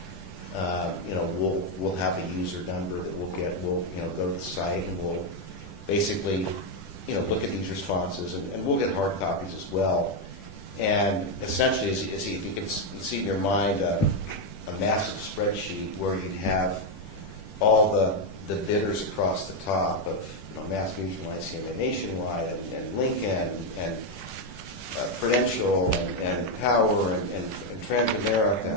You know, we'll have a user number that we'll get. We'll, you know, go to the site and we'll basically, you know, look at these responses, and we'll get hard copies as well. And essentially, as you can see in your mind, a massive spreadsheet where you'd have all the bidders across the top of, you know, Mass Mutual, ICM, Nationwide, and Lincoln, and Prudential, and Power, and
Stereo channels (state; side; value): late; right; 10 ms